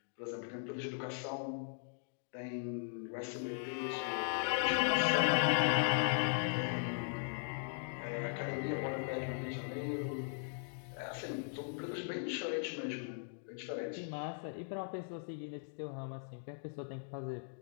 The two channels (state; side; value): silent; right; digital silence